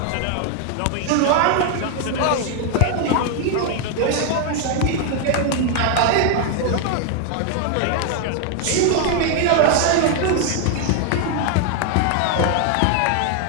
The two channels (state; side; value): different; both; correlation 0.00